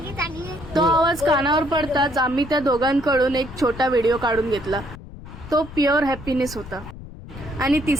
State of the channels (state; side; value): noise; left; rumble, 15 dB below the sound